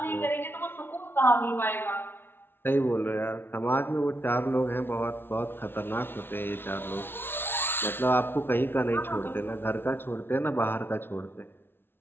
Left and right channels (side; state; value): right; late; 0.11 ms